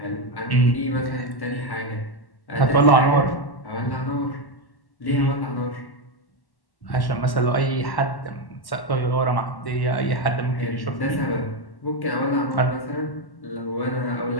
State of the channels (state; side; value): late; right; 1.1 ms